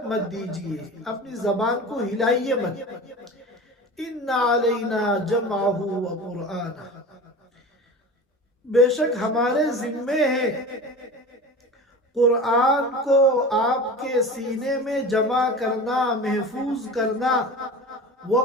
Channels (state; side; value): normal; both; correlation 0.33